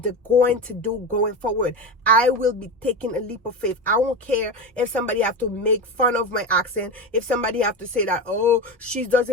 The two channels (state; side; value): normal; both; correlation 0.21